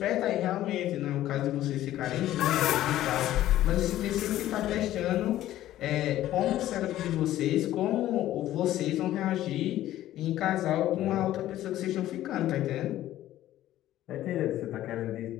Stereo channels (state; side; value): quieter; right; 13.8 dB